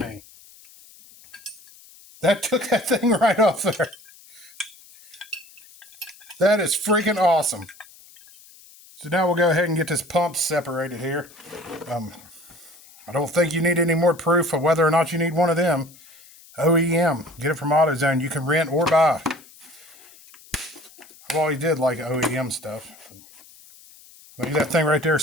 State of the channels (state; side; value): noise; left; hiss, 23 dB below the sound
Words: That took that thing right off there. That is freaking awesome. So now we'll go ahead and get this pump separated here. I don't think you need any more proof of whether or not you need one of them. OEM. Get it from AutoZone. You can rent or buy. I've always did like OEM stuff. Maybe that thing right there